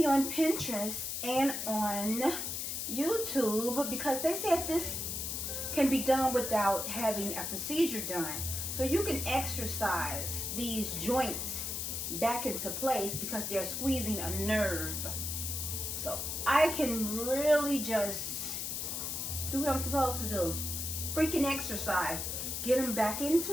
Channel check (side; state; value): left; noise; hiss, 3 dB below the sound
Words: on Pinterest and on YouTube because they said this can be done without having a procedure done. So you can exercise these joints back into place because they're squeezing a nerve. So I can really just do what I'm supposed to do. Freaking exercise. Get them back